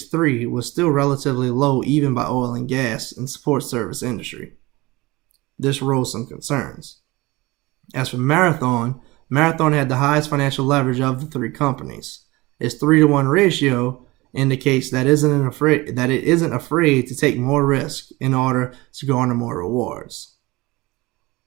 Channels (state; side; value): quieter; left; 21.6 dB